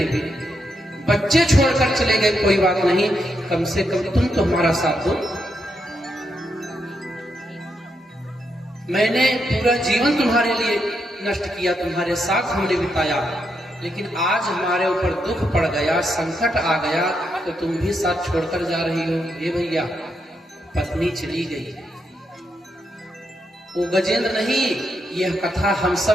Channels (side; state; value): both; normal; correlation 0.81